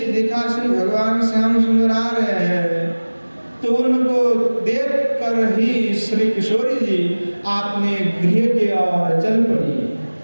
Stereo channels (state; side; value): inverted; both; correlation -1.00